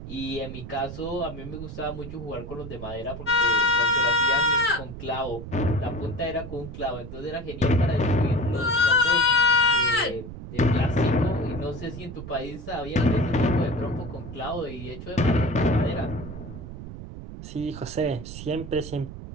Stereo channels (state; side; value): noise; right; rumble, 11 dB below the sound